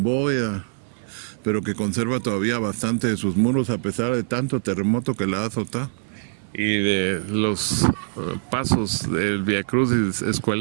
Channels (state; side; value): silent; left; 59 dB below the other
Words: bóveda, pero que conserva todavía bastante de sus muros a pesar de tanto terremoto que la ha azotado. y de los pasos del Vía Crucis